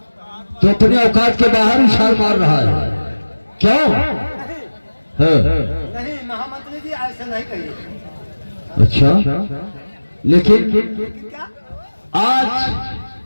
तो अपनी औकात के बाहर ही छाल मार रहा है, क्यों? नहीं महामंत्री जी, ऐसे नहीं कहिए। अच्छा, लेकिन क्या? आज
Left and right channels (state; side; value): inverted; both; correlation -1.00